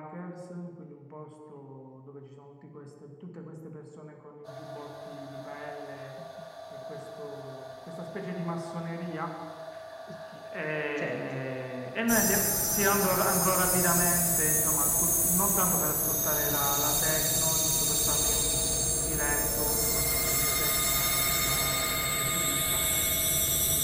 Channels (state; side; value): identical; both; correlation 1.00